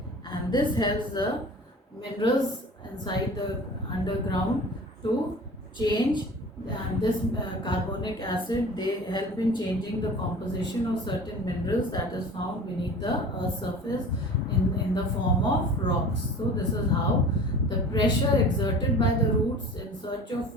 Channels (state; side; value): normal; both; correlation 0.40